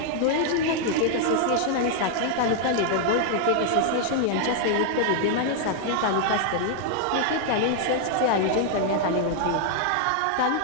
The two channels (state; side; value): different; both; correlation 0.00